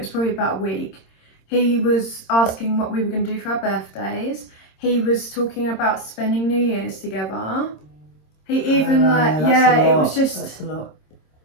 probably about a week. He was asking what we were going to do for our birthdays. He was talking about spending New Year's together. He even it was just. That's a lot.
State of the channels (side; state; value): right; late; 26 ms